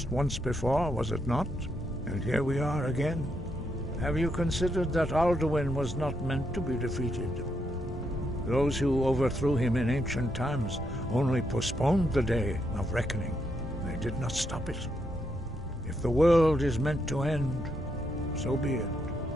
once before, was it not? And here we are again. Have you considered that Alduin was not meant to be defeated? Those who overthrew him in ancient times only postponed the day of reckoning. They did not stop it. If the world is meant to end, so be it.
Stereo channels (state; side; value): normal; both; correlation 0.79